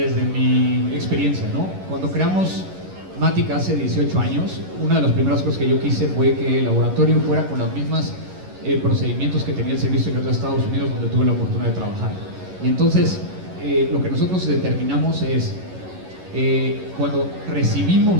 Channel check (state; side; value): late; left; 11 ms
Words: mi experiencia, ¿no? Cuando creamos Matic hace 18 años, una de las primeras cosas que yo quise fue que el laboratorio fuera con los mismos procedimientos que tenía el Servicio Secreto de Estados Unidos, donde tuve la oportunidad de trabajar. Y entonces, lo que nosotros determinamos es, cuando